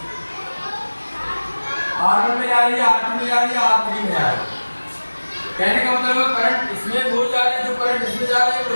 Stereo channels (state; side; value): inverted; both; correlation -1.00